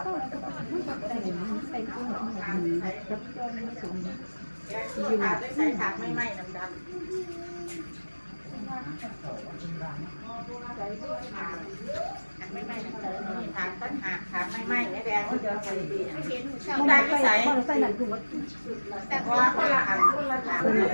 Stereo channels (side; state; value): both; inverted; correlation -1.00